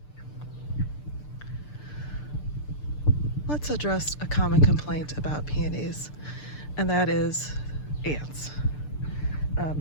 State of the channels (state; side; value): late; right; 6.7 ms